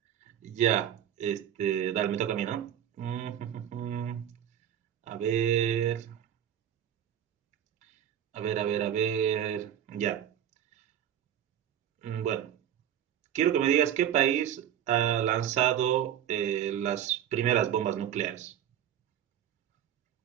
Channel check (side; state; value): left; quieter; 10.1 dB